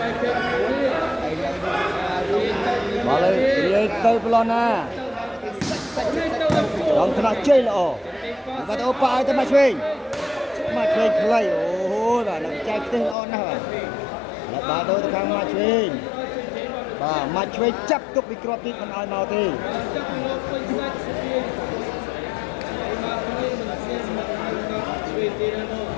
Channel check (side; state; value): right; drops out; at 13.2 s